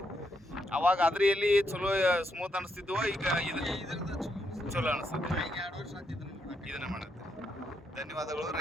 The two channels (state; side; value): normal; both; correlation 0.79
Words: ಅವಾಗ ಅದ್ರಲ್ಲಿ ಚಲೋ ಸ್ಮೂತ್ ಅನಿಸ್ತಿದ್ವು, ಈಗ ಇದು ಚಲೋ ಅನಿಸುತ್ತೆ. 2 ವರ್ಷ ಆತಿದ್ದನ್ನು ಇದನ್ನ ಮಾಡುತ್ತೆ. ಧನ್ಯವಾದಗಳು.